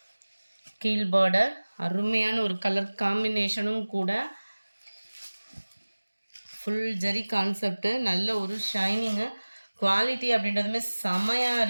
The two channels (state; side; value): inverted; both; correlation -1.00